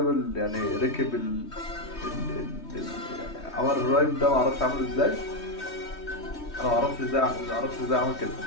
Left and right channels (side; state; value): right; late; 3.2 ms